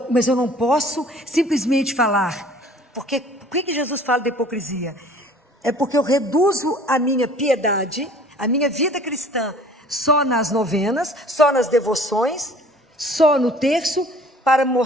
mas eu não posso simplesmente falar. Porque, por que Jesus fala da hipocrisia? É porque eu reduzo a minha piedade, a minha vida cristã, só nas novenas, só nas devoções, só no terço, para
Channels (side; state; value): both; normal; correlation 0.50